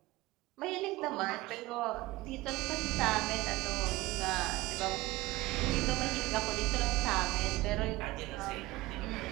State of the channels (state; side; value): quieter; left; 19.2 dB